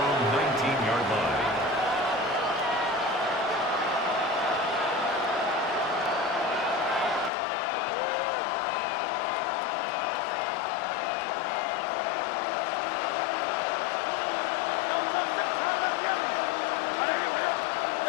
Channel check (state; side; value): drops out; right; at 7.3 s